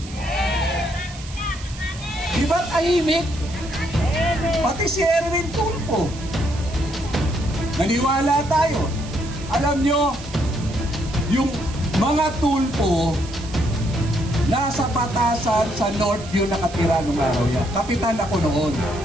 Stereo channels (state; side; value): noise; right; hiss, 16 dB below the sound